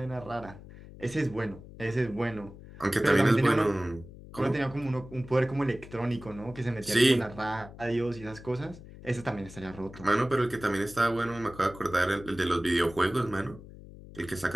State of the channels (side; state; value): left; noise; hum, 17 dB below the sound